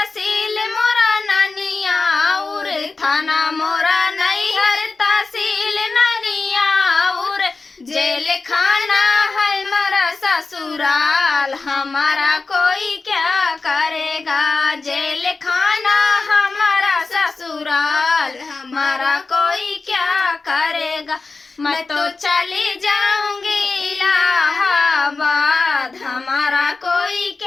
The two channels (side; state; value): right; quieter; 4.0 dB